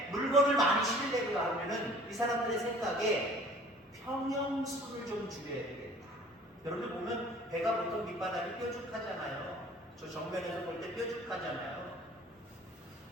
물건을 많이 실으려고 하면은 이 사람들의 생각에 평형수를 좀 줄여야 되겠다. 여러분들 보면 배가 보통 밑바닥이 뾰족하잖아요. 저 정면에서 볼 때 뾰족하잖아요.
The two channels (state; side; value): normal; both; correlation 0.50